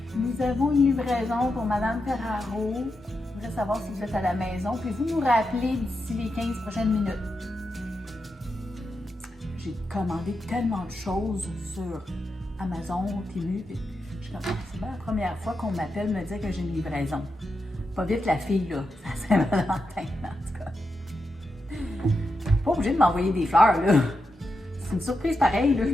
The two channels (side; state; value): both; normal; correlation 0.87